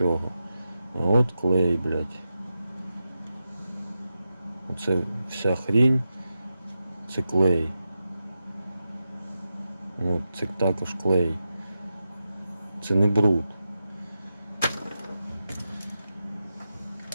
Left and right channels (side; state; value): both; inverted; correlation -0.90